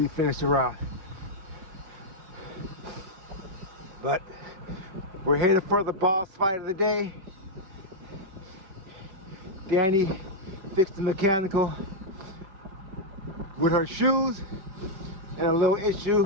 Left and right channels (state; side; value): late; left; 5.2 ms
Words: finish the route. But we're headed for the boss fight of the day. Danny fixed the mechanical with her shoes and a little